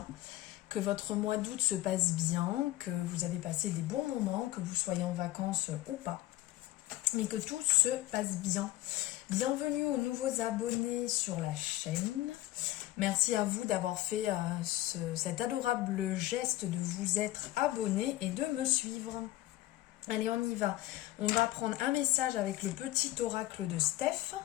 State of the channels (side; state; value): right; quieter; 16.1 dB